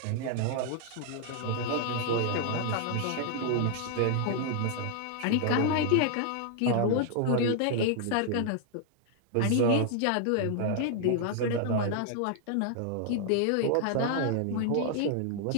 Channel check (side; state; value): both; different; correlation 0.00